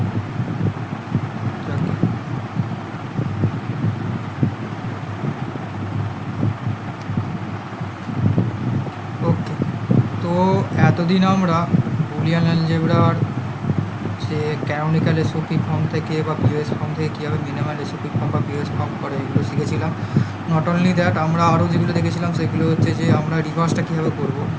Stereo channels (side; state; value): both; identical; correlation 1.00